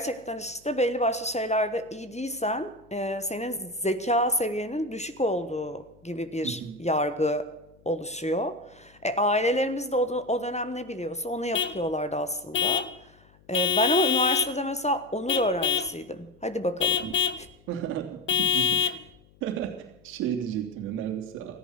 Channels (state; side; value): noise; left; hum, 29 dB below the sound